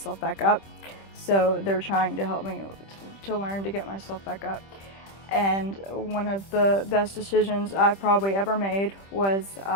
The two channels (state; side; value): late; right; 25 ms